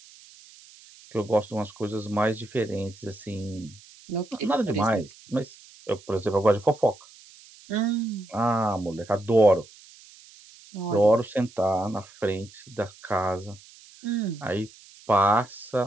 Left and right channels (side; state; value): right; noise; hiss, 23 dB below the sound